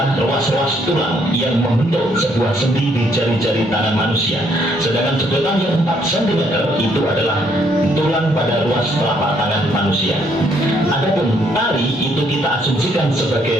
ruas-ruas tulang yang membentuk sebuah sendi di jari-jari tangan manusia. Sedangkan sedotan yang 4 cm itu adalah tulang pada ruas telapak tangan manusia. Adapun tali itu kita asumsikan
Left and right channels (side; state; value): both; normal; correlation 0.69